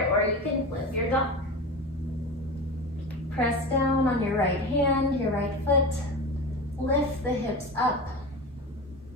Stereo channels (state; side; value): normal; both; correlation 0.27